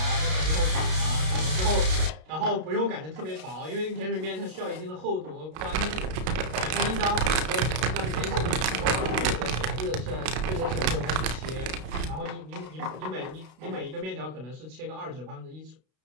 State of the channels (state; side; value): late; left; 32 ms